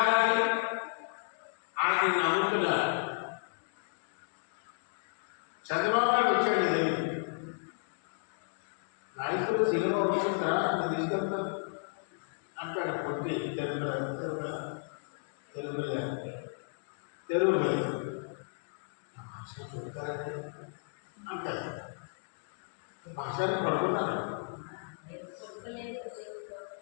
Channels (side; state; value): right; silent; digital silence